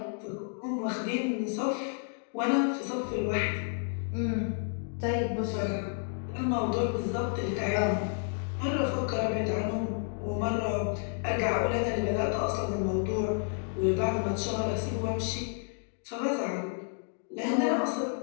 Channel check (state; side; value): silent; right; 57 dB below the other